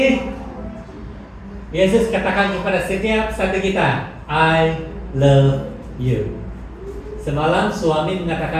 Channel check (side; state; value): both; identical; correlation 1.00